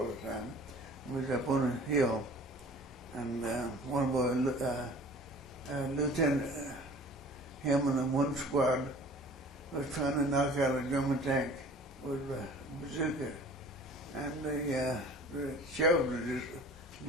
the time. We was up on a hill, and one of our lieutenant, him and one squad was trying to knock out a German tank with a bazooka, and the shells would just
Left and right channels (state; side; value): normal; both; correlation 0.46